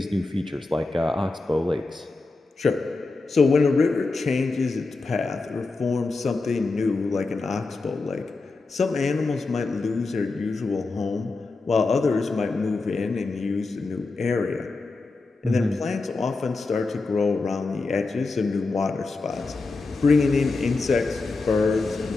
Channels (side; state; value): right; quieter; 3.7 dB